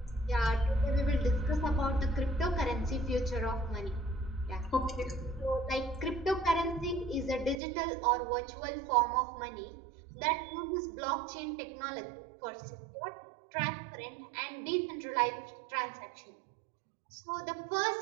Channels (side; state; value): left; drops out; at 7.6 s